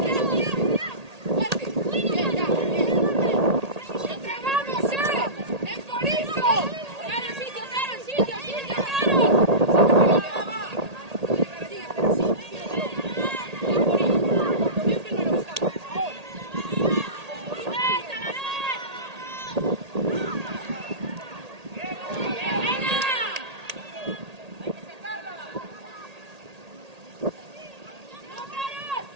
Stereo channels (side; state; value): left; late; 1.8 ms